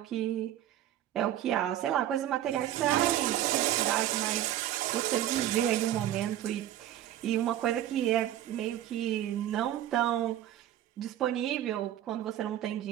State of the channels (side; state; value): left; quieter; 12.3 dB